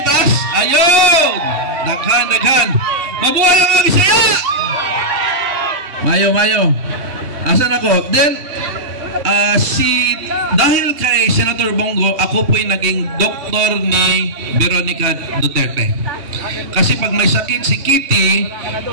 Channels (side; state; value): left; late; 3.1 ms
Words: Ayun! Daghan. Mabuhay ang mga Bisaya! Mayo. Asan ako? Then, dahil kay Senator Bongo, ako po'y naging doktor ni Veronica Duterte. Kasi pag may sakit si Kitty,